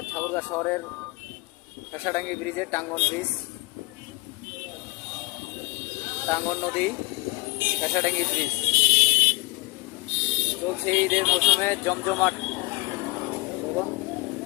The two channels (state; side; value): quieter; right; 24.0 dB